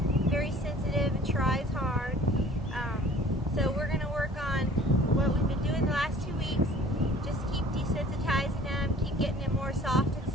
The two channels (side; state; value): both; normal; correlation 0.50